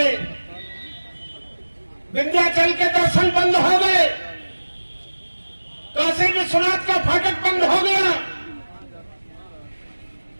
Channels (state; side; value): inverted; both; correlation -1.00